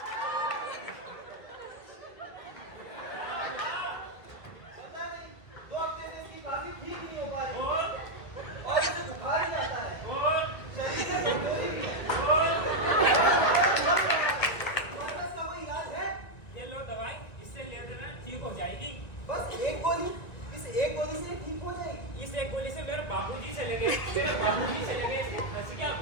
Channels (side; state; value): right; late; 2.0 ms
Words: बस एक गोली, इस एक गोली से ठीक हो जाएगी। इस एक गोली से मेरे बाबूजी चले गए, मेरे बाबूजी चले गए, इसकी हंसिया